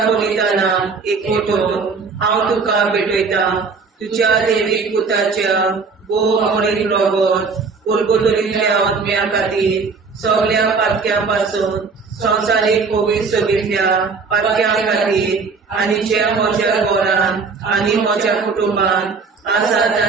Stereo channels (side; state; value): left; quieter; 4.8 dB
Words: एकवटून हांव तुका भेटयता. तुज्या दैवीक पुताच्या मोडीक रगत उरगतुरींतल्या आत्म्या खातीर सगळ्या पातक्यां पासून संवसारीक पवित्रतेंतल्या पातक्यां खातीर आनी जे म्हज्या घरांत आनी म्हज्या कुटुंबांत आसा